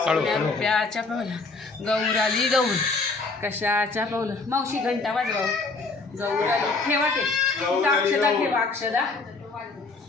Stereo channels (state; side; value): quieter; right; 3.9 dB